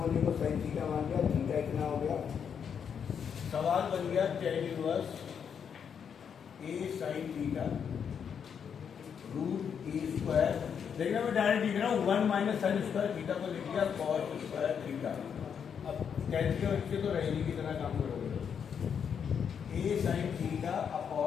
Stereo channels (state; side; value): quieter; right; 7.4 dB